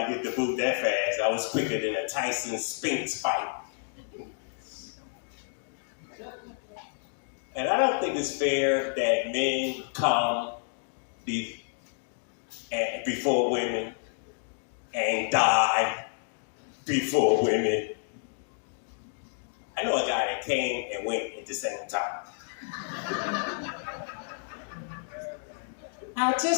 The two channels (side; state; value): right; silent; digital silence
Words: get the boot that fast. I was quicker than a Tyson Spinks fight. And I don't think it's fair that men come before women and die before women. I know a guy that came and went at the same time. I